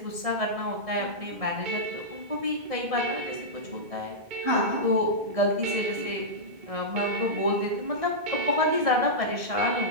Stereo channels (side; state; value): left; late; 1.6 ms